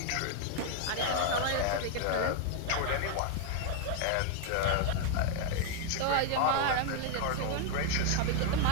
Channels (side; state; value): both; different; correlation 0.00